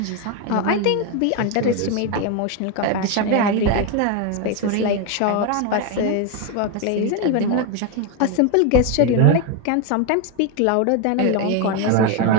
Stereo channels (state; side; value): different; both; correlation 0.02